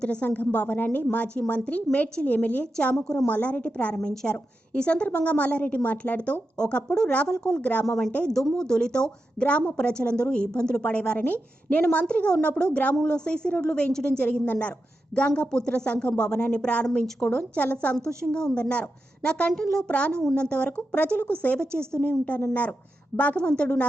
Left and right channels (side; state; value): both; normal; correlation 0.89